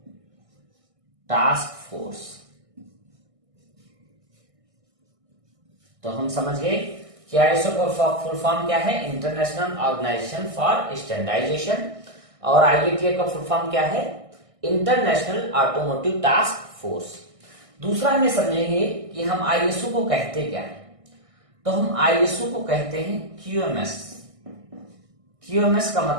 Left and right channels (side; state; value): left; late; 1.6 ms